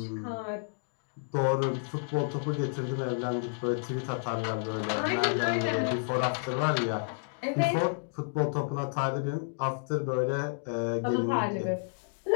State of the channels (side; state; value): right; silent; digital silence